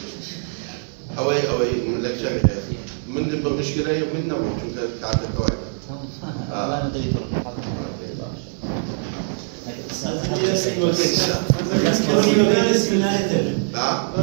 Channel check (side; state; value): left; silent; 64 dB below the other